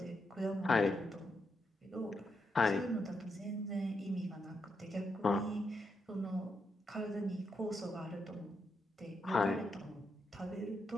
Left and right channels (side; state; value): both; normal; correlation 0.82